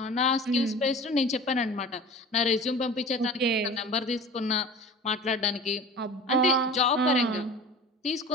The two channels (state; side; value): normal; both; correlation 0.39